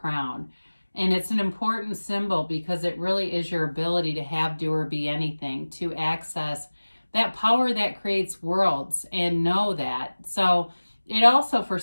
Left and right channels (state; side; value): inverted; both; correlation -1.00